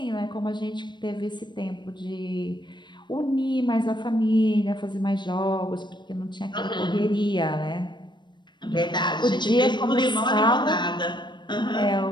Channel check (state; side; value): late; right; 0.22 ms